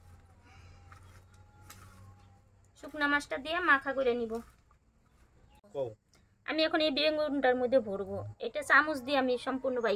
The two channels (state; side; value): identical; both; correlation 1.00